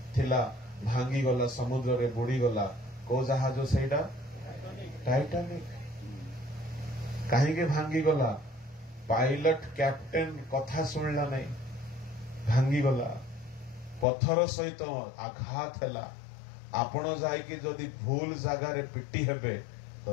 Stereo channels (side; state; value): right; drops out; at 14.1 s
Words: ଥିଲା ଭାଙ୍ଗିଗଲା ସମୁଦ୍ରରେ ବୁଡିଗଲା କୋଉ ଜାହାଜ ସେଇଟା ଟାଇଟାନିକ କାହିଁକି ଭାଙ୍ଗିଗଲା ପାଇଲଟ କ୍ୟାପ୍ଟେନ କଥା ଶୁଣିଲା ନାହିଁ ଭାଙ୍ଗିଗଲା ପଥର ସହିତ ଆଘାତ ହେଲା ଆପଣ ଯାଇକି ଯଦି ଭୁଲ ଜାଗାରେ ପିଟି ହେବେ